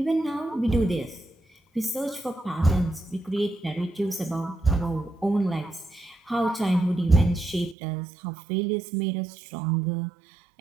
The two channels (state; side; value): drops out; left; at 7.8 s